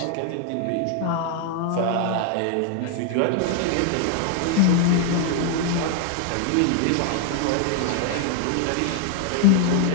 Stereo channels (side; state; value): both; different; correlation 0.00